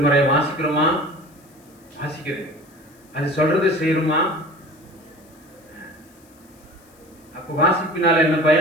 வாசிக்கிறோமா? வாசிக்கிறேன். அது சொல்றது செய்யணுமா? அப்ப வாசிப்பினால என்ன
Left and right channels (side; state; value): left; noise; hiss, 29 dB below the sound